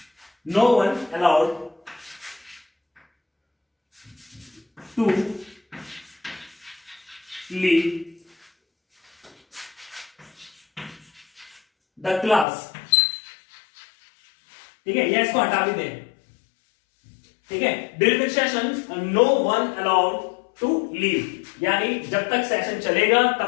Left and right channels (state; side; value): drops out; right; at 12.5 s